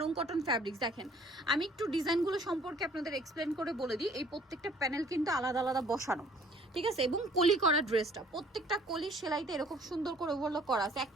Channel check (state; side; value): normal; both; correlation 0.56